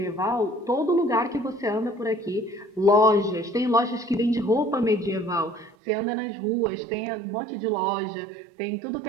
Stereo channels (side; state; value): left; drops out; at 5.8 s